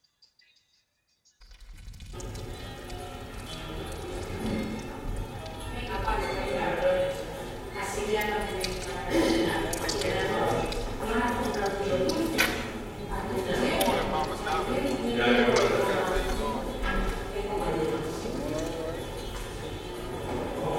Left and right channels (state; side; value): identical; both; correlation 1.00